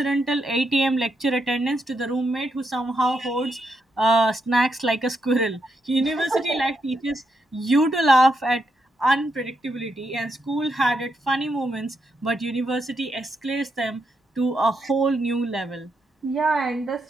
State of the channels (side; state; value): both; normal; correlation 0.81